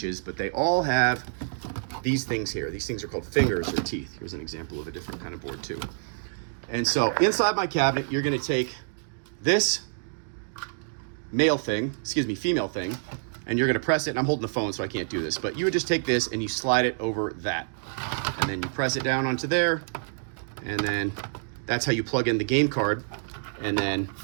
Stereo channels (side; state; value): left; silent; digital silence